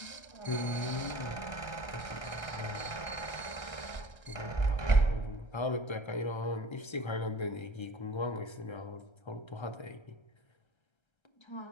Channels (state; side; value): late; right; 1.3 ms